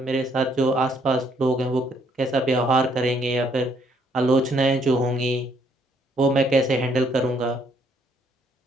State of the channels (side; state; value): both; normal; correlation 0.68